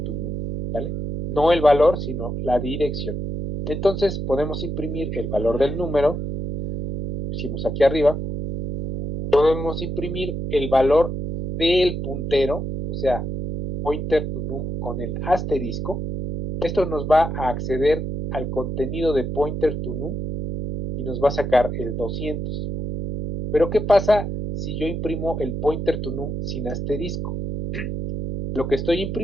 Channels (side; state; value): right; noise; hum, 4 dB below the sound